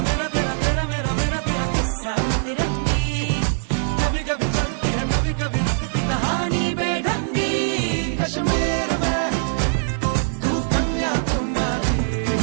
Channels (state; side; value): silent; left; digital silence